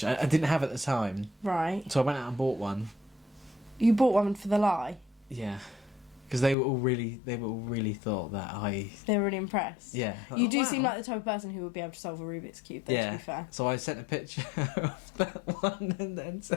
I didn't have at the time, Right. so I went out and bought one. You bought one for the lie. Yeah, because they were all really thought that They were really impressed. yeah. You do wow. seem like the type of person who would be able to solve a Rubik's Cube, though, to be fair. So I sent a picture of that one and then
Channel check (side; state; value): right; drops out; at 6.6 s